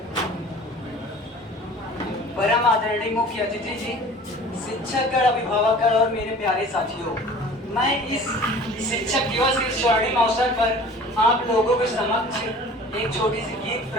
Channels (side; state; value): both; normal; correlation 0.45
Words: परम आदरणीय मुख्य अतिथि जी, शिक्षकगण, अभिभावकगण और मेरे प्यारे साथियों, मैं इस शिक्षक दिवस के स्वर्णिम अवसर पर आप लोगों के समक्ष एक छोटी सी गीत